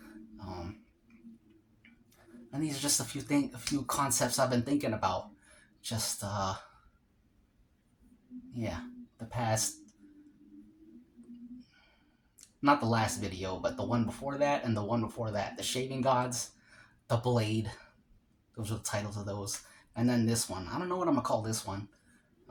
And these are just a few concepts I've been thinking about. Just the past, not the last video, but the one before that and the one before that. The Shaving Gods, The Blade. Those are the titles of those. And then this one. I don't know what I'm going to call this one.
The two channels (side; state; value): both; identical; correlation 1.00